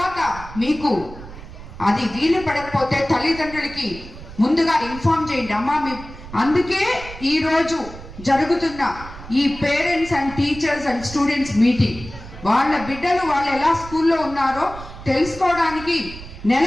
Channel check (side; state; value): right; noise; rumble, 15 dB below the sound